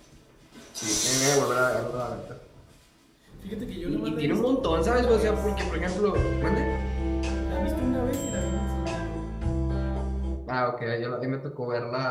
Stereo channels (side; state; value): both; identical; correlation 1.00